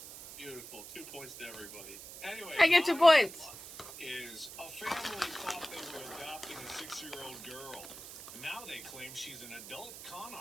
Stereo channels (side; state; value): right; noise; hiss, 13 dB below the sound